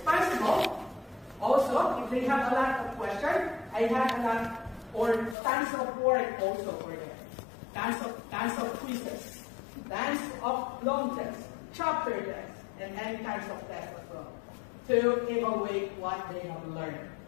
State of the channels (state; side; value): drops out; right; at 5.4 s